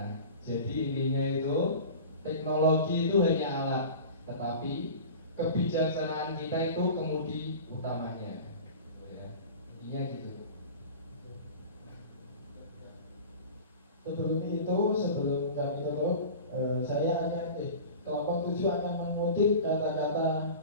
jadi intinya itu teknologi itu hanya alat, tetapi kebijaksanaan kita itu kemudi utamanya. Ya, intinya gitu. Sebelum kami tutup, saya akan kelompok 7 akan mengutip kata-kata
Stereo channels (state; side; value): inverted; both; correlation -0.36